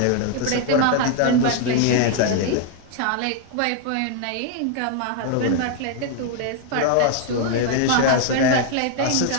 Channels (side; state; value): both; different; correlation 0.00